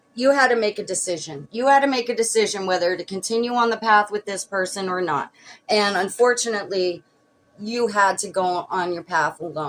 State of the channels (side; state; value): both; identical; correlation 1.00